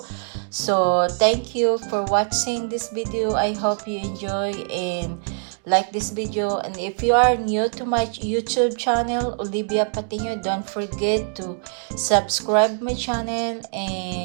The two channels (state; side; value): silent; left; 58 dB below the other